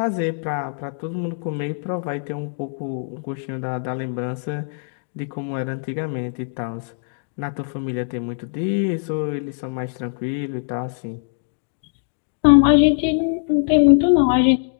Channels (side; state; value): right; silent; digital silence